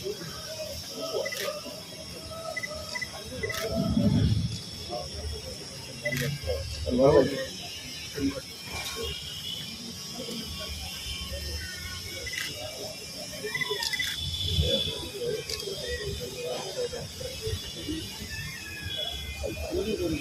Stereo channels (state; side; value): identical; both; correlation 1.00